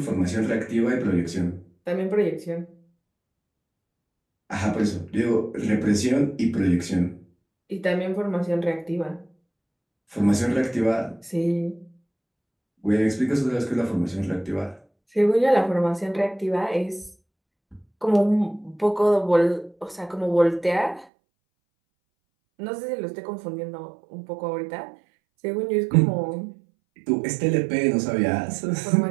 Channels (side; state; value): left; drops out; at 21.1 s